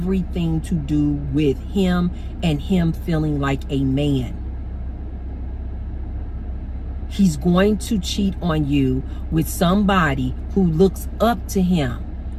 to do with him and him feeling like a man. He's going to cheat on you with somebody who looks up to him.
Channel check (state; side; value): identical; both; correlation 1.00